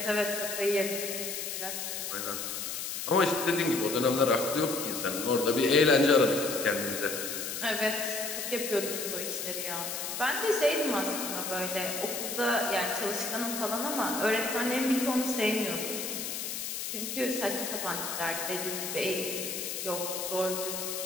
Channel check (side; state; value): left; noise; hiss, 4 dB below the sound